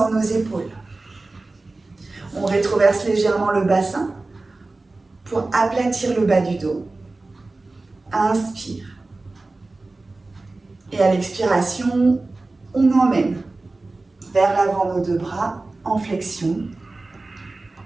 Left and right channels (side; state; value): left; quieter; 3.3 dB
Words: nos épaules. On rétroverse légèrement le bassin pour aplatir le bas du dos. Inspire. Et à l'expiration, on emmène vers l'avant nos 2 bras en flexion.